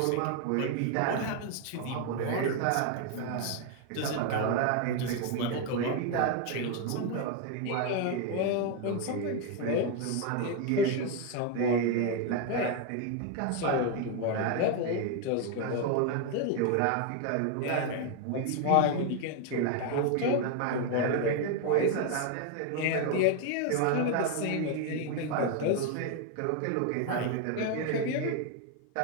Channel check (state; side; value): different; both; correlation 0.01